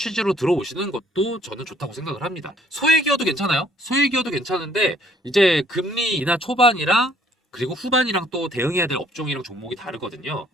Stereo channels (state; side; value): normal; both; correlation 0.63